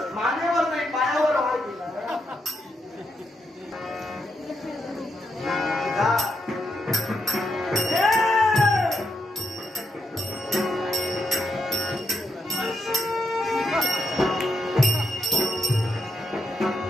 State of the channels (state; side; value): normal; both; correlation 0.81